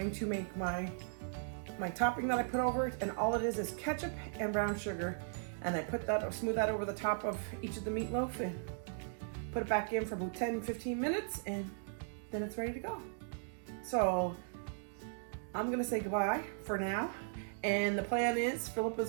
to make my topping that I put over it, and all it is ketchup and brown sugar, and I put that, smooth that over the top of each of the meatloaf and put it back in for about 10-15 minutes, and then it's ready to go. So I'm gonna say goodbye for now, and the plan is Philip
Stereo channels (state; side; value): silent; left; digital silence